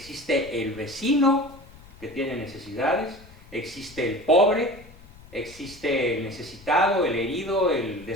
el vecino que tiene necesidades, existe el pobre, existe el necesitado, el herido, el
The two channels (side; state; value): left; noise; rumble, 21 dB below the sound